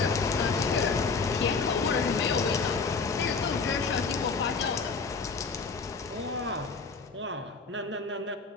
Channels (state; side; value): quieter; right; 4.6 dB